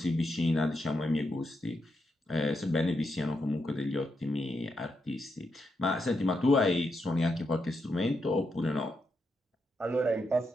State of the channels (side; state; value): both; normal; correlation 0.83